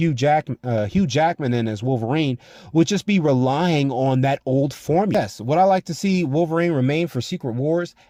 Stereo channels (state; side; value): identical; both; correlation 1.00